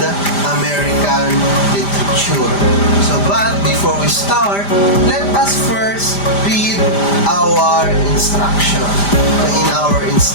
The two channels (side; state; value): right; late; 5.0 ms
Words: American literature. But before we start, let us first read our instruction. In our